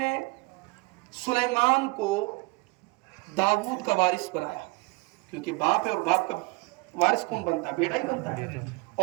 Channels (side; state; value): left; quieter; 25.7 dB